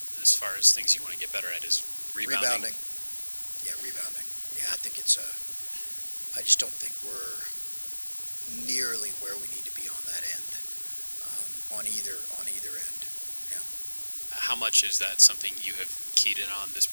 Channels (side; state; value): both; inverted; correlation -1.00